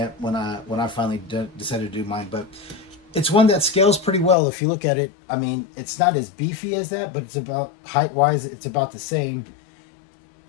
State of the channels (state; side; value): drops out; right; at 4.4 s